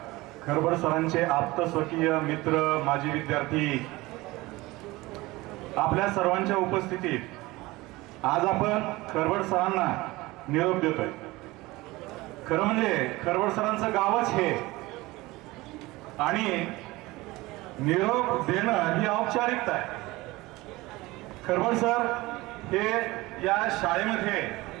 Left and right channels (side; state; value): left; quieter; 20.5 dB